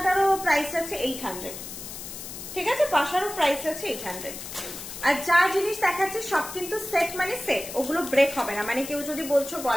প্রাইস আছে 800, ঠিক আছে, পাশারও প্রাইস আছে 800। আর যা জিনিস দেখাচ্ছে সব কিন্তু সেট, মানে সেট, ওগুলো ব্রেক হবে না। মানে কেউ যদি বলছো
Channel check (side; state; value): left; noise; hiss, 10 dB below the sound